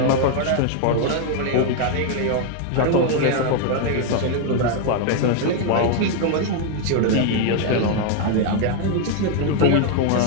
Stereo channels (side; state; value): both; different; correlation 0.00